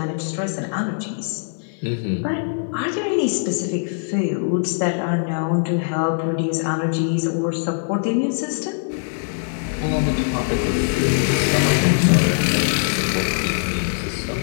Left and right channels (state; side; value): silent; right; digital silence